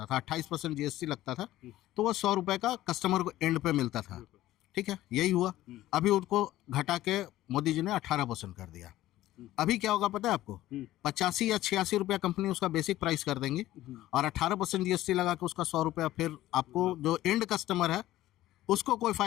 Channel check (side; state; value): right; quieter; 15.0 dB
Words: था, 28% जीएसटी लगता था, तो वो 100 रुपये का कस्टमर को एंड पे मिलता था। ठीक है, यही हुआ। अभी उनको घटा के मोदी जी ने 18% कर दिया। अभी क्या होगा पता है आपको? 85 या 86 रुपया कंपनी उसका बेसिक प्राइस कर देंगी, और 18% जीएसटी लगा के उसका 100 रुपया फिर आपको जो एंड कस्टमर है उसको कोई